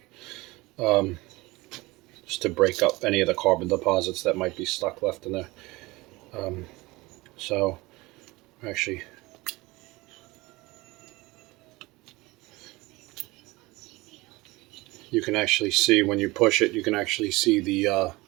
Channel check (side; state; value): left; quieter; 21.6 dB